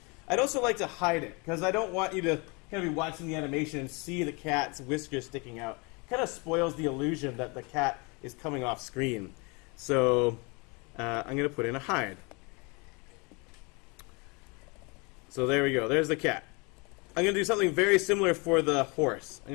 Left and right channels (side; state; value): right; quieter; 29.7 dB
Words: I'd also like to hide it, because I don't want you to kind of be watching the animation and see the cat's whiskers sticking out. It kind of spoils the illusion that the cat is coming off screen. So I'm going to put in a hide. So there we go. There's the cat. I'm going to do something very similar for the horse. I'm